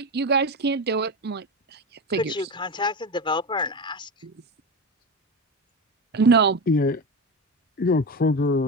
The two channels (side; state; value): both; normal; correlation 0.21